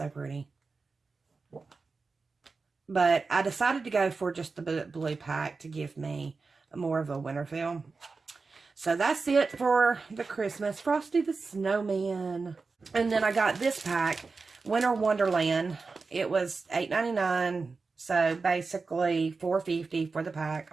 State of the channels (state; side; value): quieter; left; 4.3 dB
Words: pretty. But I decided to go for just the blue pack to give me more of a winter feel. So that's it for the Christmas. Frosty the Snowman. And then I got this pack, Winter Wonderland. It was $8.99. So basically $4.50 for the pack,